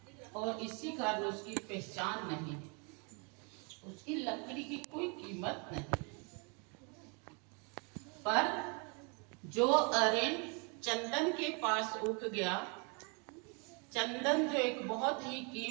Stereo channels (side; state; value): left; quieter; 34.4 dB